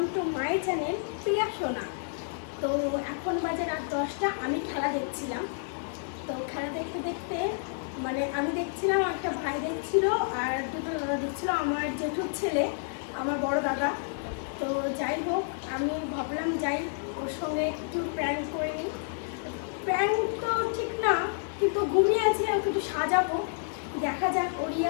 to my channel Priya Sona. তো এখন বাজে রাত 10টা। আমি খেলা দেখছিলাম। তো খেলা দেখতে দেখতে মানে আমি দেখছিলাম, একটা ভাই দেখছিল আর দুটো দাদা দেখছিল, আমার জেঠুর ছেলে, আমার বড় দাদা। তো যাই হোক, আমি ভাবলাম যাই ওর সঙ্গে একটু প্র্যাঙ্ক করে নিই। প্র্যাঙ্ক তো ঠিক না, কিন্তু ঘুমিয়ে আছে, ওকে একটু সাজাবো, দেখা যাক ওর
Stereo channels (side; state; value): right; silent; 58 dB below the other